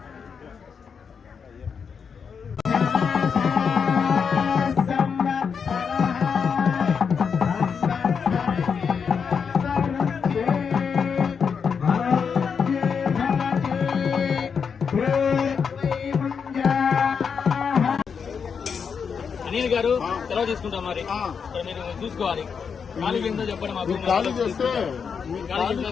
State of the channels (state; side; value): quieter; right; 6.3 dB